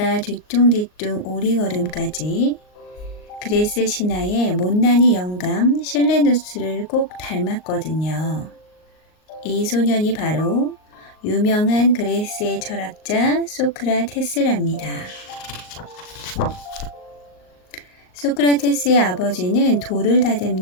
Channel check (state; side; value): late; right; 38 ms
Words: 뒤뚱뒤뚱 오리걸음까지. 그레스 신화의 못난이 영감 실레누스를 꼭 닮았거든요. 이 소년이 바로 유명한 그레스의 철학자 소크라테스랍니다. 소크라테스의 아버지는 돌을